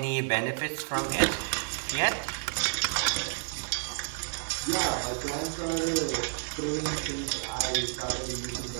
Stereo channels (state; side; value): silent; left; 58 dB below the other